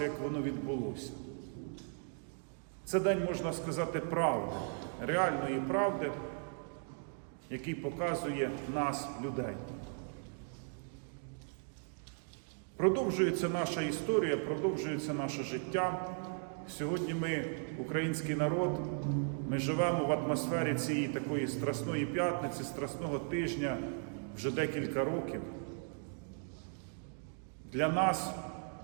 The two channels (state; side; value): silent; left; 53 dB below the other